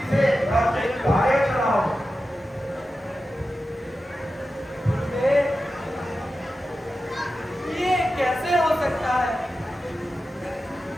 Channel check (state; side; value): normal; both; correlation 0.92